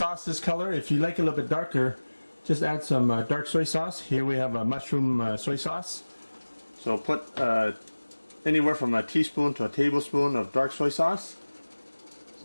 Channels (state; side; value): inverted; both; correlation -1.00